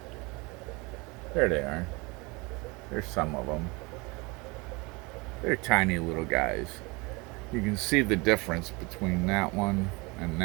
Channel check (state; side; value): quieter; left; 26.6 dB